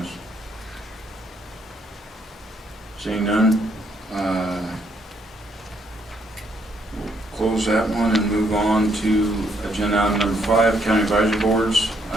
Seeing none, we'll close that one and move on to agenda item number 5, county advisory boards.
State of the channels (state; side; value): normal; both; correlation 0.71